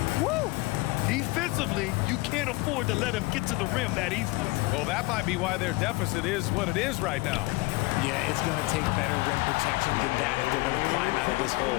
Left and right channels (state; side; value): quieter; right; 23.2 dB